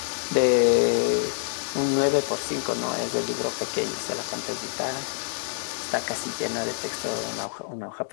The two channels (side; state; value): right; silent; 61 dB below the other